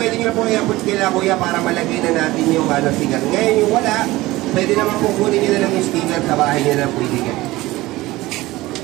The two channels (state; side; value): quieter; left; 18.8 dB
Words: nyo po iabot kila kuya para malagay na natin yung sticker. Ngayon yung wala, pwede naman po kunin nyo na lang yung sticker sa bahay nyo na pwede ka.